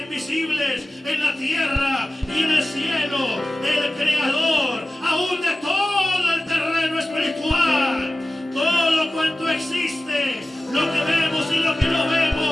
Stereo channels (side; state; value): both; normal; correlation 0.96